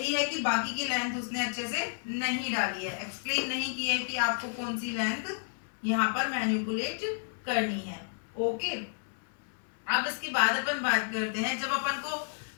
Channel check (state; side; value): silent; right; 57 dB below the other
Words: है कि बाकी की लेंथ उसने अच्छे से नहीं डाली है, एक्सप्लेन नहीं किया है कि आपको कौन सी लेंथ यहाँ पर मैनिपुलेट करनी है। ओके, अब इसके बाद अपन बात करते हैं, जब अपन को